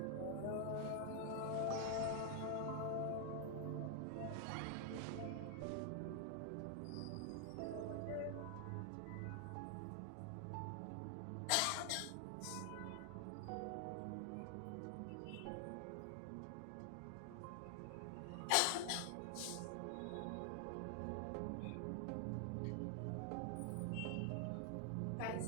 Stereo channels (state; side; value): different; both; correlation 0.00